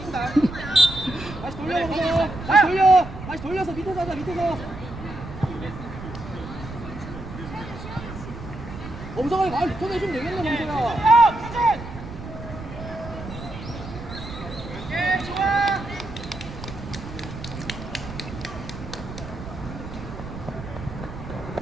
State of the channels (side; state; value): right; noise; rumble, 11 dB below the sound